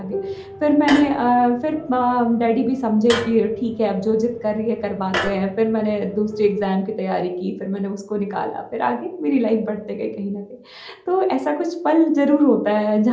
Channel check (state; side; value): identical; both; correlation 1.00